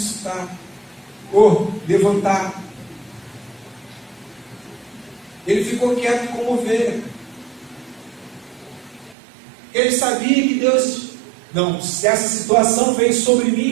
Ou levantar. Ele ficou quieto como ovelha. Ele sabia que Deus... Não, se essa situação vem sobre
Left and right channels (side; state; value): left; drops out; at 9.2 s